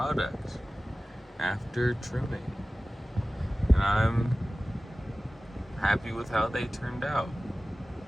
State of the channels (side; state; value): both; normal; correlation 0.97